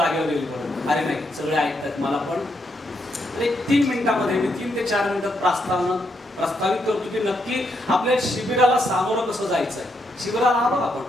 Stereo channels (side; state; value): both; normal; correlation 0.78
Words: येईल परत, अरे नाही सगळे ऐकतात मला। पण एक 3 मिनिटामध्ये मी 3 ते 4 मिनिटात प्रस्तावित करतो की नक्की आपल्या शिबिराला सामोरं कसं जायचंय। शिबिराला आलो आपण,